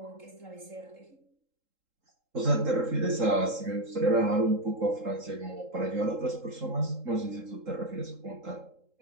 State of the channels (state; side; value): late; left; 3.8 ms